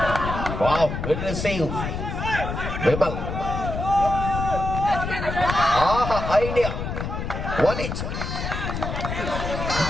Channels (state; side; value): noise; left; rumble, 4 dB below the sound